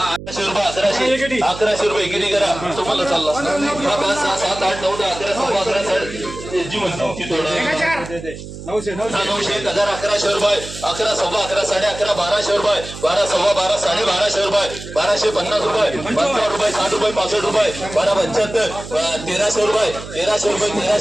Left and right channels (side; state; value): right; noise; hum, 12 dB below the sound